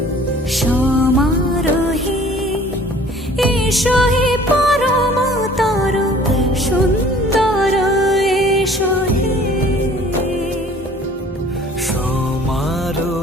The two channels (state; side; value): normal; both; correlation 0.51